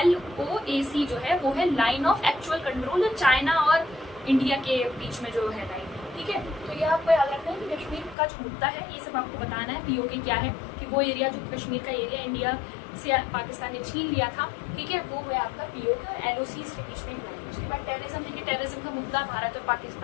LOAC जो है वो है line of actual control, China और इंडिया के बीच में जो है लाइन। ठीक है, तो ये आपको याद रखना है कि कश्मीर का जो मुद्दा है ये सब आपको बताना है। पीओके क्या है कि वो एरिया जो कश्मीर का एरिया इंडिया से पाकिस्तान ने छीन लिया था, ठीक है, वो है आपका पीओके और LOC के बीच में। उसके बाद टेररिज्म, देखिए टेररिज्म का मुद्दा भारत और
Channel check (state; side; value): drops out; right; at 8.2 s